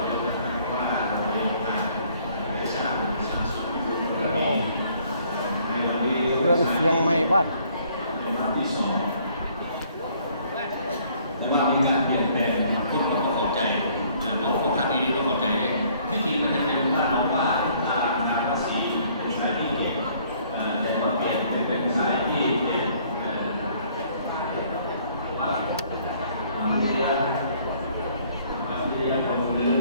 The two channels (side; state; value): both; inverted; correlation -0.61